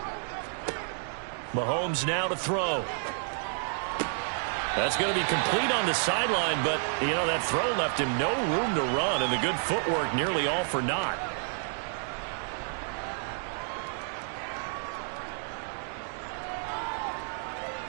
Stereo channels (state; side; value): silent; left; 58 dB below the other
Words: Mahomes now to throw. That's going to be complete on the sideline, but, you know, that throw left him no room to run, and the good footwork nearly all for naught.